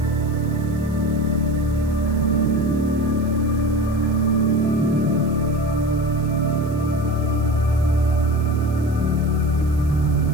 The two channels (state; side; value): noise; right; hiss, 24 dB below the sound